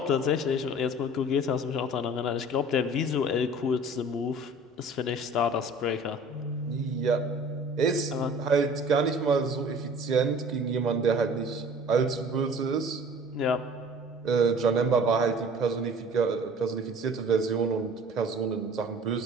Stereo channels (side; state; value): both; normal; correlation 0.46